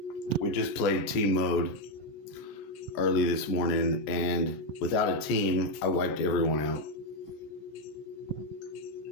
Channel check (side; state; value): right; late; 14 ms